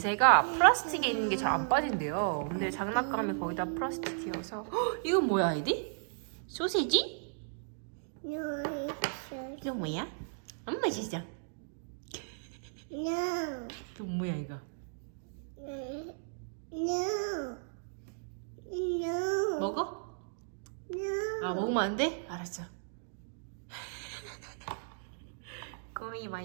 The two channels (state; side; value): silent; left; digital silence